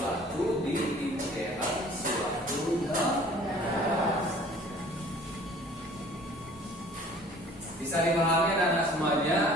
di dalam suatu negara. Bisa dipahami anak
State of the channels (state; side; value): normal; both; correlation 0.50